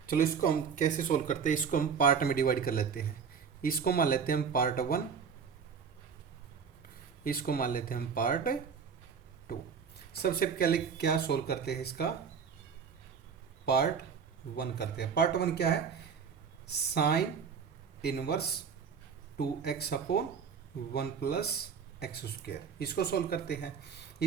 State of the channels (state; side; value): quieter; left; 6.4 dB